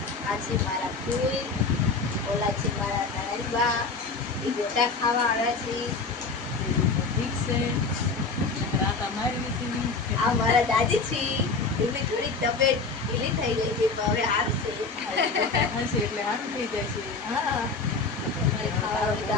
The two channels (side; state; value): right; quieter; 4.2 dB